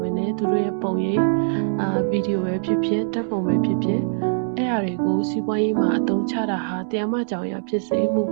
ဘဲနဲ့သူတို့ရဲ့ပုံရိပ်ဗီဒီယိုပဲဖြစ်ဖြစ်ဓာတ်ပုံပဲဖြစ်ဖြစ်အဲ့အရာတွေကိုစီးပွားရေးမှာအသုံးချတာဟာတရားမကြောင်ရဖြစ်စေမူ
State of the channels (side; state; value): left; silent; digital silence